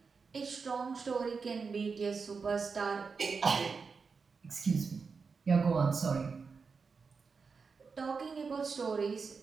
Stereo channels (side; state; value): left; quieter; 5.1 dB